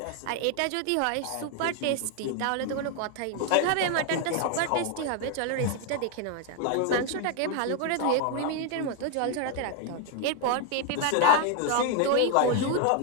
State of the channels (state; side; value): different; both; correlation 0.01